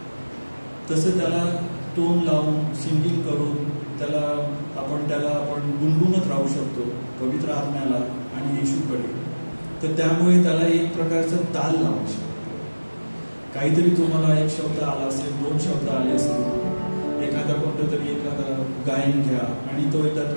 तसं त्याला टोन लावून, सिंगिंग करून त्याला आपण गुणगुणत राहू शकतो पवित्र आत्म्याला आणि येशूकडे. तर त्यामुळे त्याला एक प्रकारचा ताल लावू शकतो. काहीतरी तुम्हाला एक शब्द आला असेल, 2 शब्द आले असतील, एखादा गायन घ्या आणि तो एकदा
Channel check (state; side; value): inverted; both; correlation -1.00